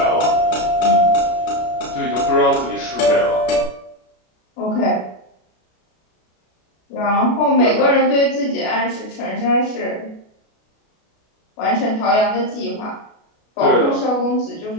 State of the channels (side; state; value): right; late; 33 ms